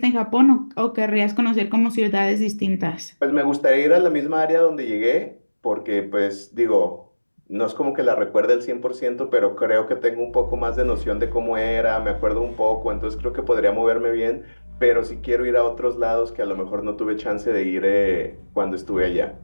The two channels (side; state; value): both; inverted; correlation -1.00